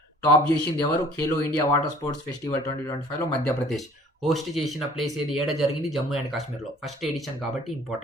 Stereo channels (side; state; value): both; normal; correlation 0.52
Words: టాప్ చేసింది ఎవరు? Khelo India water sports festival 2025లో మధ్యప్రదేశ్ హోస్ట్ చేసిన ప్లేస్ ఏది? ఏడ జరిగింది? జమ్మూ అండ్ కాశ్మీర్లో. ఫస్ట్ ఎడిషన్ కాబట్టి